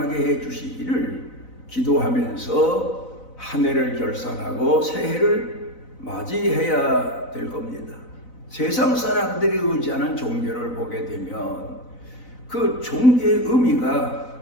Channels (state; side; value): late; right; 4.0 ms